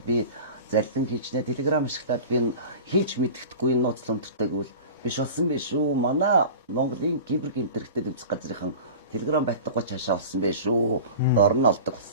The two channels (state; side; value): inverted; both; correlation -0.37